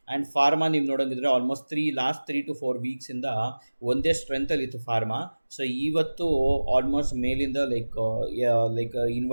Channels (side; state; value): both; inverted; correlation -1.00